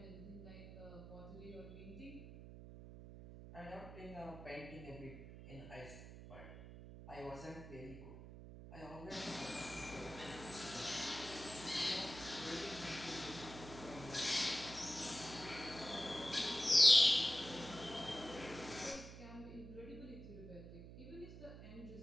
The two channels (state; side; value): noise; right; hum, 13 dB below the sound